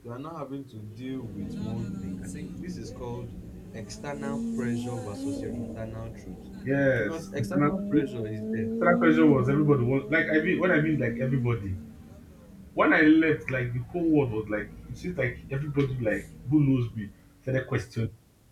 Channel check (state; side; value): identical; both; correlation 1.00